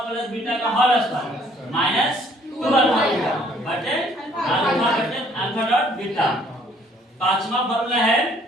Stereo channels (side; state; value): both; normal; correlation 0.61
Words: प्लस बीटा का whole square minus 2 alpha beta बटे अल्फा बटे अल्फा डॉट बीटा। पांचवा फार्मूला है